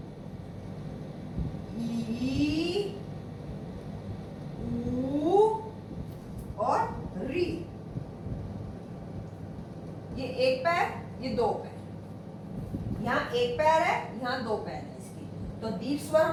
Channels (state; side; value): identical; both; correlation 1.00